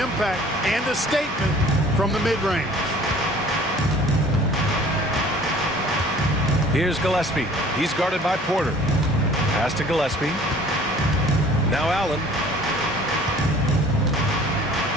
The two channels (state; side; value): normal; both; correlation 0.50